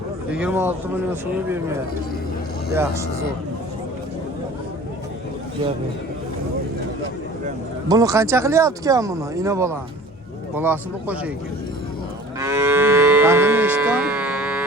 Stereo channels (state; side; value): normal; both; correlation 0.44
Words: 26 million so'mga bermayapti. Yaxshi, zo'r. Gapi. Buni qancha qilyapti-kan buni? Inovalar. Bolasi bu qo'sha ekan. Qani nechta?